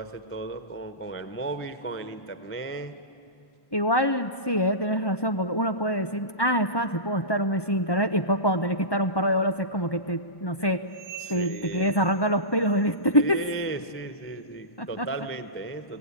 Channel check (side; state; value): right; late; 1.1 ms